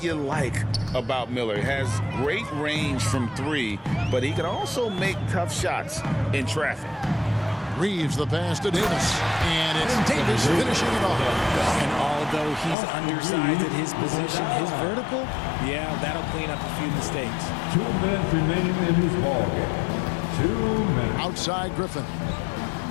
you like about Miller. He has great range from 3, but he can also make tough shots in traffic. Reeves the pass to Davis. And it's Davis finishing it off. And although he's undersized at his position, his vertical, yeah, that'll clean up a few mistakes. 2 minutes remaining in this ball game. 2 minutes. Outside Griffin.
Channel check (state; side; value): drops out; right; at 12.8 s